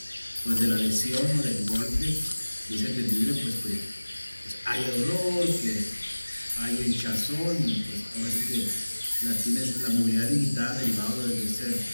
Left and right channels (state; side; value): inverted; both; correlation -1.00